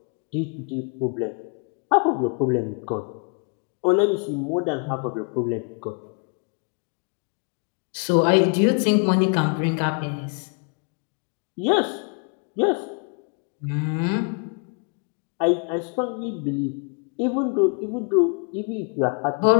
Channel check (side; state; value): right; quieter; 38.4 dB